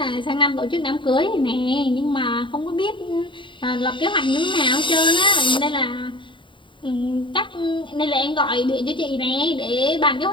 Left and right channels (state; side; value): late; right; 0.24 ms